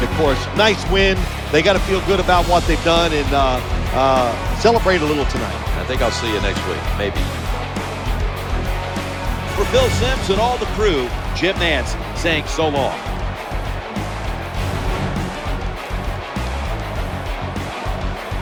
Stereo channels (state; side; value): identical; both; correlation 1.00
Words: course. Nice win. They got to feel good about what they've done and celebrate a little tonight. I think I'll see you next week, maybe. For Phil Simms and all the crew, Jim Nantz saying so long.